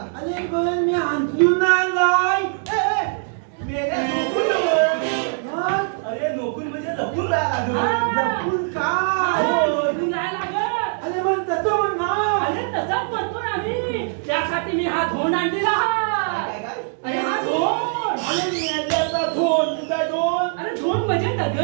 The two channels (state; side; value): silent; left; 63 dB below the other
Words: अरे पण मी अंतरून आलाय. मेल्या नोकून नव्हे. अरे नोकून म्हणजे लपून राहायला लागलं. लपून काय? नोकून राहायला लागत. अरे पण तसं म्हण ना. अरे तसाच म्हणतोय आम्ही. त्यासाठी मी हा धोंड आणलेला. काय काय? अरे हा धोंड. अरे मेल्याचा धोन. तुझा धोन. अरे धोंड म्हणजे